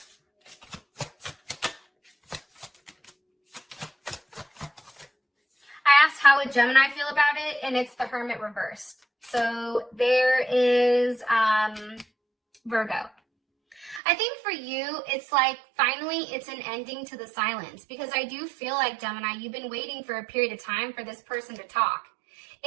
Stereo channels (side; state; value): left; drops out; at 14.0 s